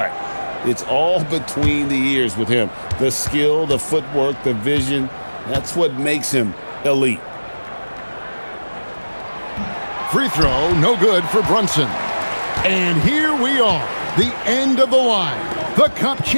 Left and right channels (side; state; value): both; inverted; correlation -1.00